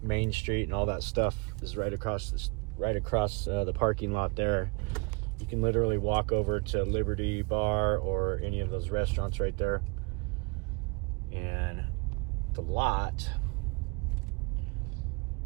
Main Street, and all that stuff is right across the parking lot there. You can literally walk over to Liberty Bar or any of those restaurants right there. And the lot.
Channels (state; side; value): quieter; left; 31.1 dB